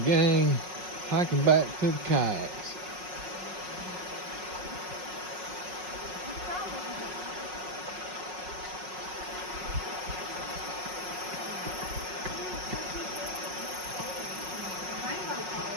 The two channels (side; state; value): left; late; 5.5 ms